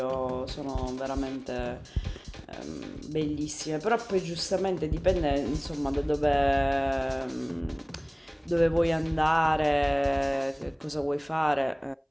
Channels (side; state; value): both; identical; correlation 1.00